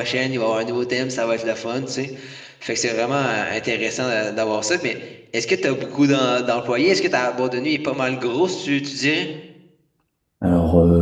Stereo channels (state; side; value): identical; both; correlation 1.00